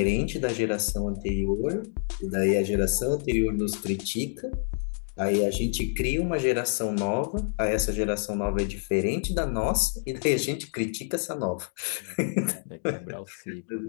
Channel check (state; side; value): silent; right; digital silence